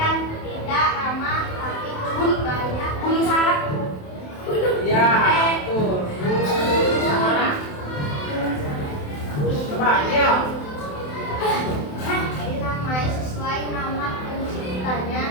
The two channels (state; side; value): late; right; 27 ms